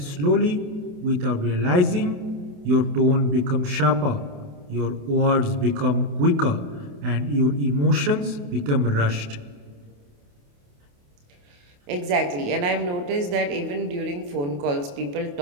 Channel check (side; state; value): left; late; 28 ms